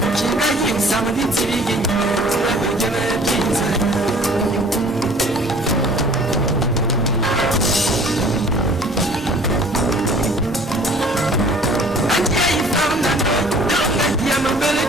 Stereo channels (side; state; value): both; normal; correlation 0.51